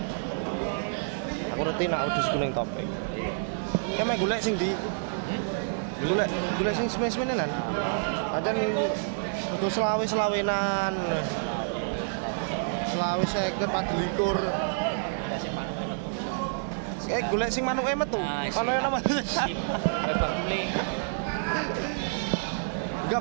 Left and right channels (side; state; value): left; silent; digital silence